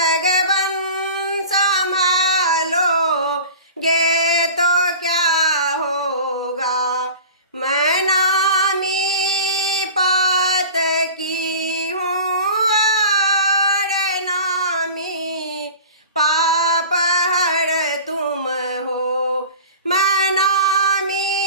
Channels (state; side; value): inverted; both; correlation -0.39